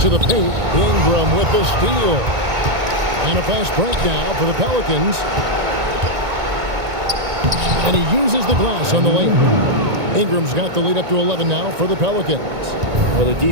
the paint. Ingram with the steal. And a fast break now for the Pelicans. And he uses the glass on the layup. Ingram's got the lead up to 11 now for the Pelicans. Well, the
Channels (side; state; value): left; late; 2.0 ms